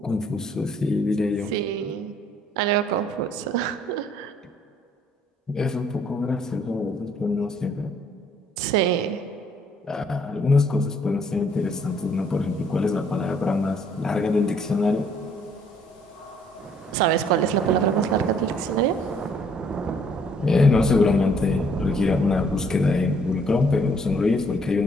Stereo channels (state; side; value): normal; both; correlation 0.64